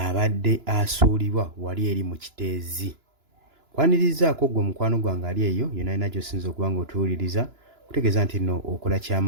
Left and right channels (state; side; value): late; left; 2.9 ms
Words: asuulibwa wali eri mu kiteezi. Kwanirizaako ggwe mukwano gwange ali eyo yonna yonna gy'osinza okuba ng'otuwuliriza kutegeeza nti nno okola